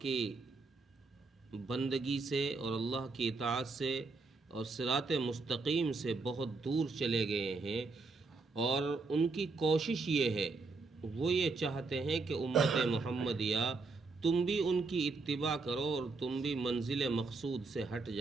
کی بندگی سے اور اللہ کی اطاعت سے اور صراط مستقیم سے بہت دور چلے گئے ہیں۔ اور ان کی کوشش یہ ہے، وہ یہ چاہتے ہیں کہ امت محمدیہ تم بھی ان کی اتباع کرو اور تم بھی منزل مقصود سے ہٹ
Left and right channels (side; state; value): left; quieter; 4.0 dB